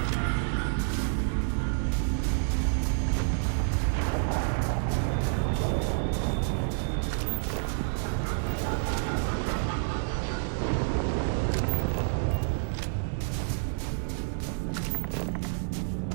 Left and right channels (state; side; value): silent; left; 59 dB below the other